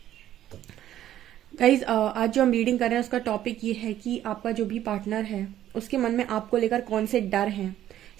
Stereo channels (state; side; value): quieter; left; 12.2 dB